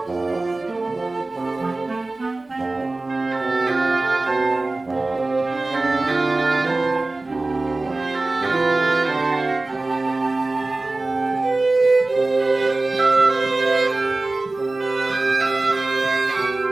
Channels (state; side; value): quieter; left; 3.1 dB